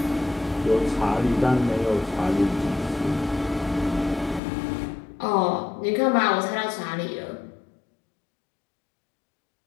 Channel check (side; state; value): right; drops out; at 4.4 s